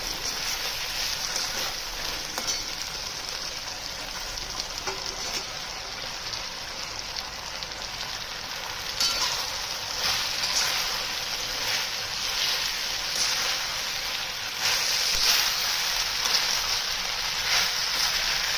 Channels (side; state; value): both; identical; correlation 1.00